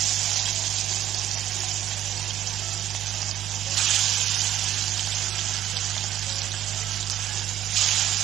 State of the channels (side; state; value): left; quieter; 12.0 dB